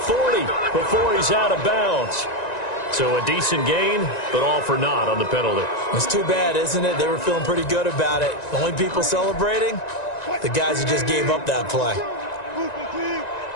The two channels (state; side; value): late; right; 1.9 ms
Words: before he's out of bounds. So a decent gain, but all for naught on the penalty. It's too bad, isn't it? They were feeling pretty good about it. The only people celebrating, the guys who just gave up that play.